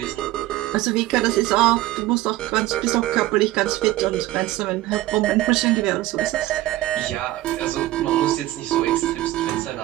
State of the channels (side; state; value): left; quieter; 16.4 dB